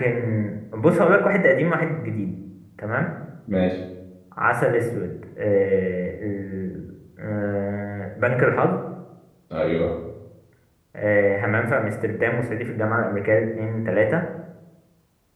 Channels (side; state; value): both; identical; correlation 1.00